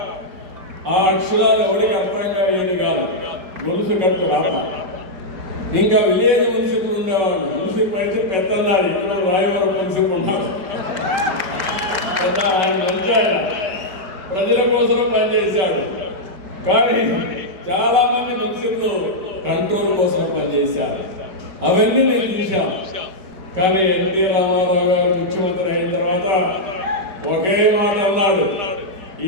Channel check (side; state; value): left; late; 5.3 ms